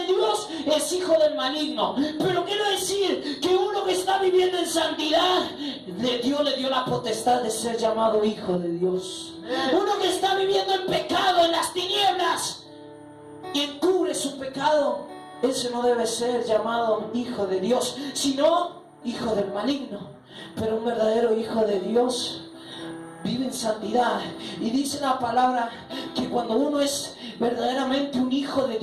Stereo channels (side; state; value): both; identical; correlation 1.00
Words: Dios, es hijo del maligno. Pero quiero decir que uno que está viviendo en santidad, Dios le dio la potestad de ser llamado hijo de Dios. Uno que está viviendo en pecado, en las tinieblas, y encubre su pecado, ese no debe ser llamado hijo de Dios, sino hijo del maligno. Pero un verdadero hijo de Dios vive en santidad. Y dice la palabra que cuando uno es verdaderamente un hijo de